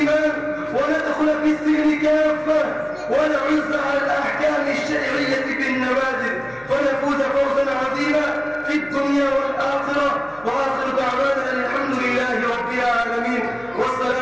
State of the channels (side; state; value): left; noise; hum, 27 dB below the sound